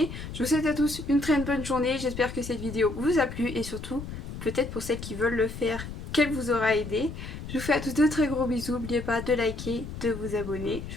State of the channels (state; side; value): noise; left; rumble, 9 dB below the sound